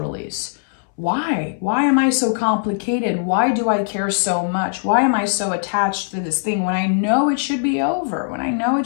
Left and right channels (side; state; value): right; silent; 66 dB below the other